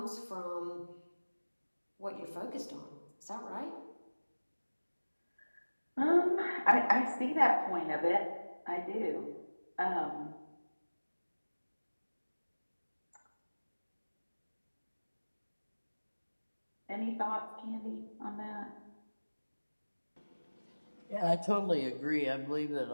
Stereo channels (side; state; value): both; inverted; correlation -1.00